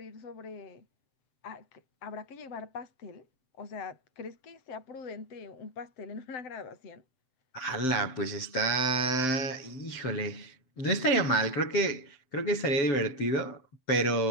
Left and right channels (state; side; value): late; right; 7.7 ms